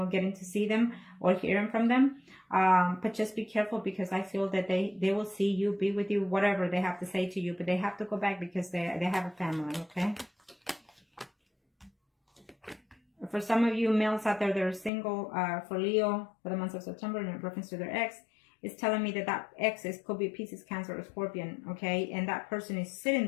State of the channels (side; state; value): right; drops out; at 14.9 s